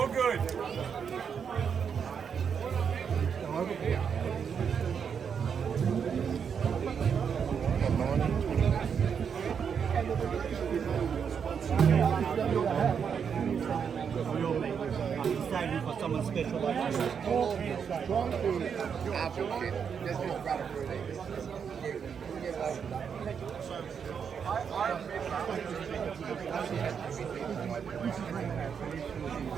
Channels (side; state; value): left; quieter; 7.0 dB